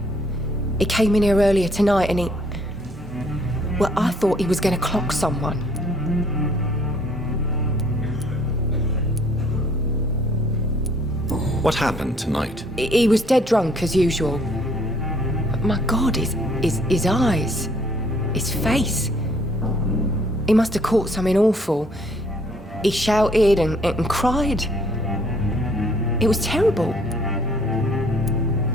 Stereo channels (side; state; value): both; normal; correlation 0.62